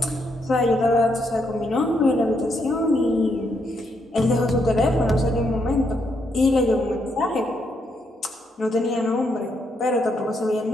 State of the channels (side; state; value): both; normal; correlation 0.77